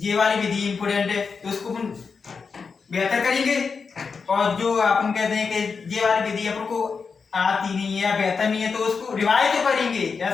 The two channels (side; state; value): right; quieter; 5.3 dB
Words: ये वाली विधि इंपोर्टेंट है तो उसको अपन बेहतर करेंगे, और जो अपन कहते हैं कि ये वाली विधि अपन को आती नहीं है या बेहतर नहीं है तो उसको रिवाइज तो करेंगे,